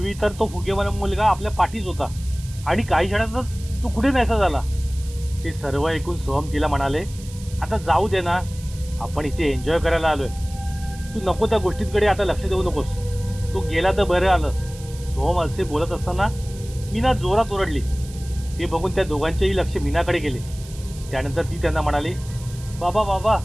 तर तो फुगेवाला मुलगा आपल्या पाठीच होता आणि काही क्षणातच तो कुठे नाहीसा झाला. ते सर्व ऐकून सोहम तिला म्हणाले, आता जाऊ दे ना, आपण इथे एन्जॉय करायला आलोय. तू नको त्या गोष्टींकडे आता लक्ष देऊ नकोस. तू गेला तर बरं आलं. सोहम असे बोलत असताना मीना जोरात ओरडली. ते बघून त्या दोघांचेही लक्ष मीनाकडे गेले. त्यानंतर ती त्यांना म्हणाली, बाबा बाबा,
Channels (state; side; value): noise; right; hiss, 19 dB below the sound